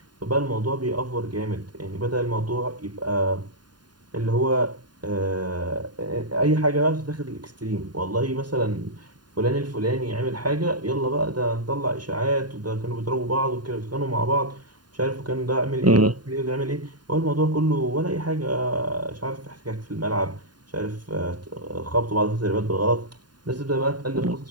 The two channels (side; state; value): left; late; 0.70 ms